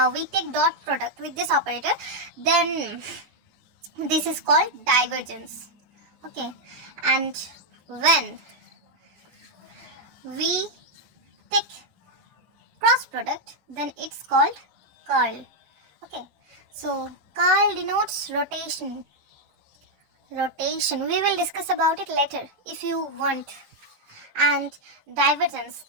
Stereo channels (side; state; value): left; late; 13 ms